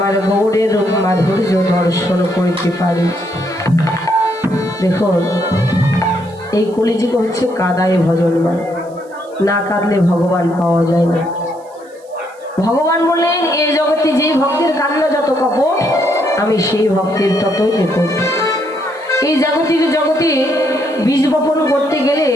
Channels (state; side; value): noise; right; hiss, 30 dB below the sound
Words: গৌরের মাধুর্য দর্শন করিতে পারে। দেখুন, এই কলিযুগ হচ্ছে কাদায় ভজনমান, না কাঁদলে ভগবান পাওয়া যায় না। ভগবান বললেন, এই জগতে যে ভক্তের কান্না যত কপট, আমি সেই ভক্তের ততই নিকট। এই জাগতিক জগতে বীজ বপন করতে গেলে